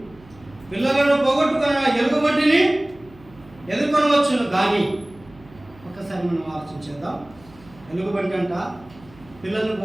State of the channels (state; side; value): noise; right; hum, 24 dB below the sound